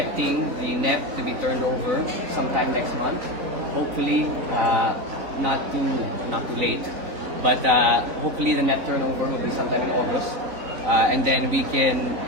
the NEP to be turned over sometime next month. Hopefully, not too late. But hopefully the NEP turnover will be sometime in August. And then we can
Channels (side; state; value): left; late; 3.9 ms